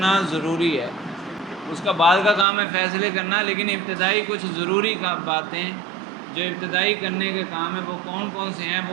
ضروری ہے۔ اس کا بعد کا کام ہے فیصلے کرنا، لیکن ابتدائی کچھ ضروری باتیں جو ابتدائی کرنے کے کام ہیں وہ کون کون سے ہیں، وہ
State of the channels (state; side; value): drops out; left; at 2.5 s